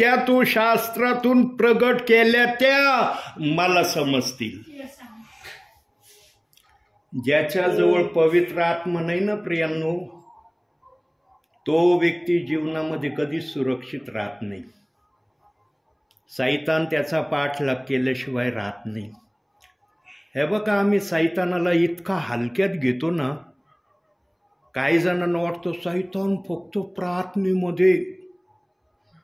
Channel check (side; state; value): both; identical; correlation 1.00